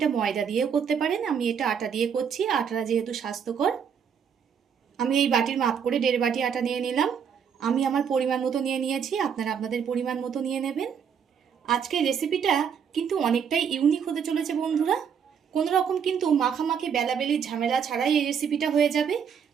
ময়দা দিয়েও করতে পারেন, আমি এটা আটা দিয়ে করছি। আটাটা যেহেতু স্বাস্থ্যকর, আমি এই বাটির মাপ করে 1.5 বাটি আটা নিয়ে নিলাম। আমি আমার পরিমাণ মতো নিয়ে নিয়েছি, আপনারা আপনাদের পরিমাণ মতো নিয়ে নেবেন। আজকের রেসিপিটা কিন্তু অনেকটাই ইউনিক হতে চলেছে বন্ধুরা। কোনো রকম কিন্তু মাখামাখি বেলাবেলির ঝামেলা ছাড়াই এই রেসিপিটা হয়ে যাবে,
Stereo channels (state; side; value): quieter; left; 7.4 dB